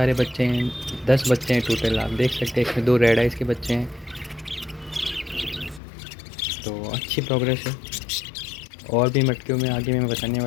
बच्चे हैं, 10 बच्चे हैं टोटल। आप देख सकते हैं इसमें 2 रेड आइज के बच्चे हैं, तो अच्छी प्रोग्रेस है। और भी मटकियों में आगे मैं बताने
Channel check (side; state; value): right; drops out; at 5.8 s